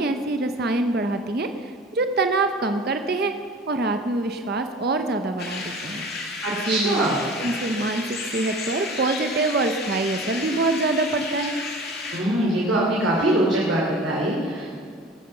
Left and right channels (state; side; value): normal; both; correlation 0.41